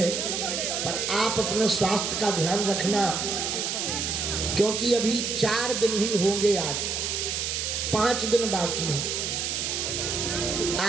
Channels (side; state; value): right; noise; hiss, 1 dB below the sound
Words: पर आप अपने स्वास्थ्य का ध्यान रखना, क्योंकि अभी 4 दिन ही होंगे, आज 5 दिन बाकी है।